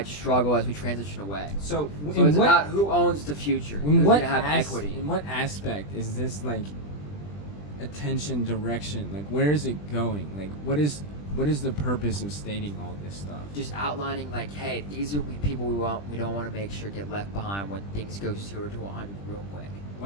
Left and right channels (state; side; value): late; right; 20 ms